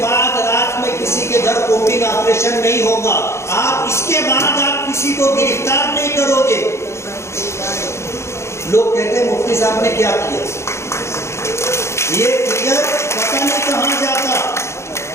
रात में किसी के घर कॉम्बिंग ऑपरेशन नहीं होगा, आप इसके बाद आप किसी को गिरफ्तार नहीं करोगे। लोग कहते हैं मुफ्ती साहब ने क्या किया, ये फिगर पता नहीं कहां जाता।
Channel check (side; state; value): right; late; 0.13 ms